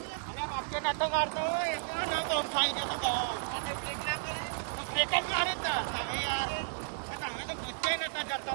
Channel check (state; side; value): silent; left; 56 dB below the other